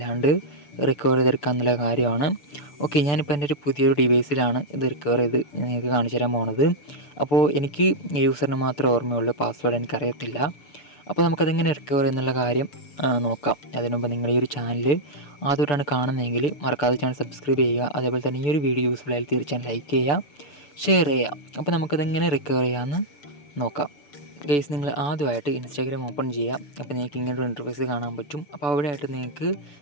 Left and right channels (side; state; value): right; late; 6.9 ms